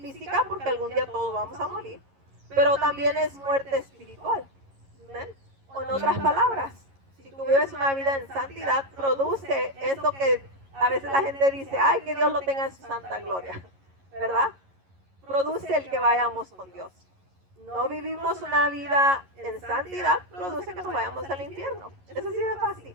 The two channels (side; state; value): left; late; 11 ms